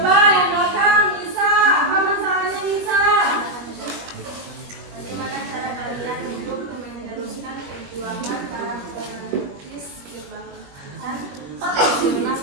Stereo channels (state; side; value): late; left; 21 ms